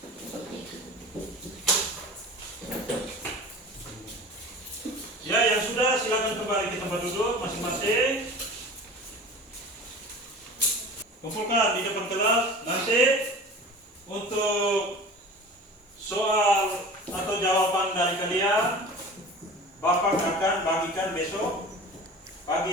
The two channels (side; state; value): both; normal; correlation 0.37